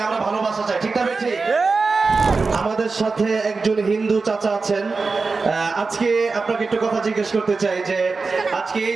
আমরা ভালোবাসা চাই। ঠিক না বেঠি? আমাদের সাথে একজন হিন্দু চাচা আছেন। আজকে আপনাকে একটু কথা জিজ্ঞেস করতে চাই যে আজকে এই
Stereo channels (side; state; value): left; quieter; 4.2 dB